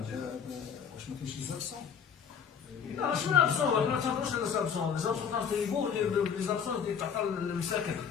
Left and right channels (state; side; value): quieter; right; 7.2 dB